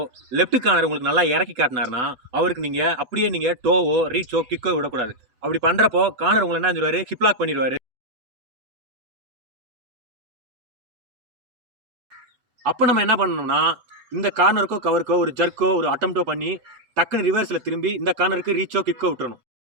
லெஃப்ட் கார்னர் உங்களுக்கு நல்லா இறக்கி காட்டினார்னா அவருக்கு நீங்கள் அப்படியே நீங்கள் டோவோ ரீச்சோ கிக்கோ விடக்கூடாது. அப்படி பண்ணுறப்போ கார்னர் உங்களை என்ன சொல்லுவார், ஹிப்லாக் பண்ணிடுவார். அப்போ நம்ம என்ன பண்ணணும்னா, இந்த கார்னருக்கோ கவருக்கோ ஒரு ஜர்க்கோ ஒரு அட்டம்ப்டோ பண்ணி டக்குன்னு ரிவர்ஸில் திரும்பி இந்த கார்னருக்கு ரீச்சோ கிக்கோ விட்டுறணும்.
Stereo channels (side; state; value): left; late; 8.1 ms